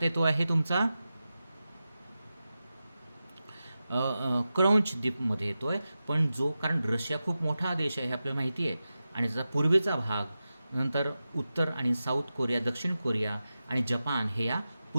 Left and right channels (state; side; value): inverted; both; correlation -0.93